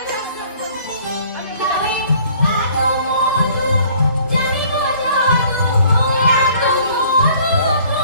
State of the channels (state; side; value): inverted; both; correlation -0.56